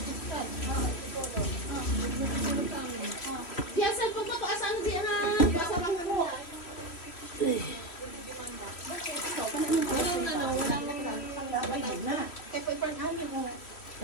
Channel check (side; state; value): right; late; 3.1 ms